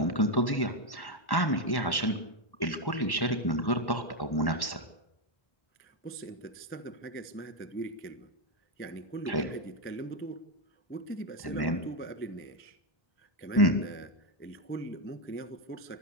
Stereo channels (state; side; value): late; right; 1.1 ms